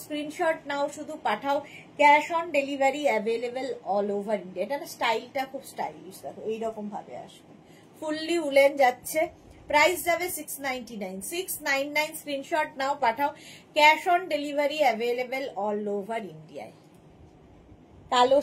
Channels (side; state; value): both; identical; correlation 1.00